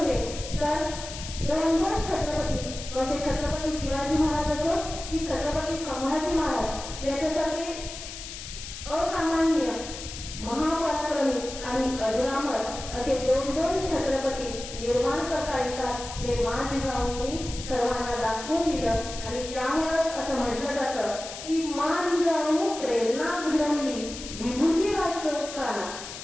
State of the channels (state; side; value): noise; left; hiss, 10 dB below the sound